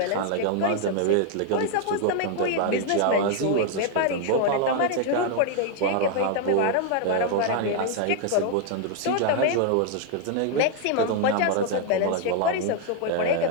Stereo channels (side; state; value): both; different; correlation 0.00